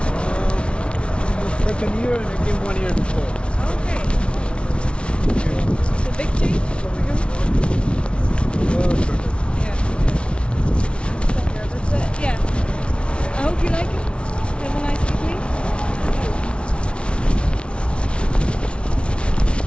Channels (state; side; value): late; right; 0.059 ms